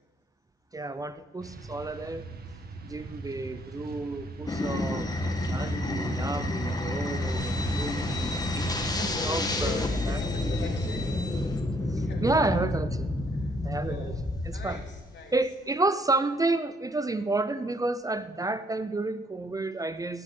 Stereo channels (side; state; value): both; normal; correlation 0.67